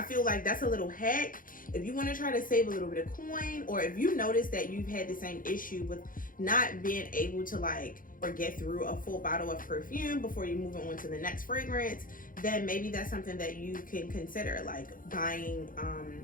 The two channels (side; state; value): right; late; 0.40 ms